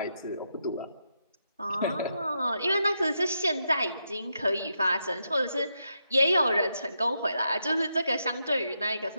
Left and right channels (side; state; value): both; inverted; correlation -0.83